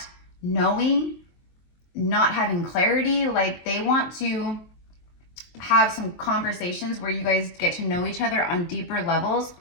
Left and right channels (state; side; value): late; right; 23 ms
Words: knowing, not having clarity. Like, they want to have some conversations where you guys get to know each other on deeper levels.